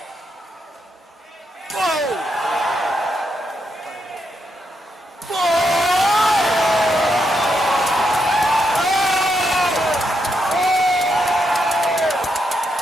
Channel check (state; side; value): normal; both; correlation 0.81